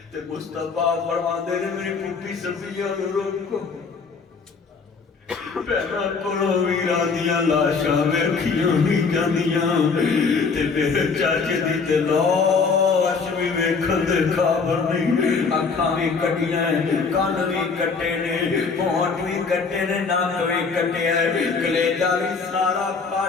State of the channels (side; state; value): right; quieter; 5.0 dB